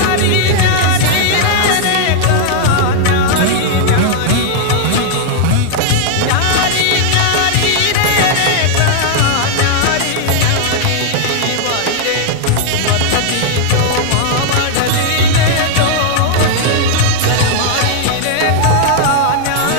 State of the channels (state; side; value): different; both; correlation -0.01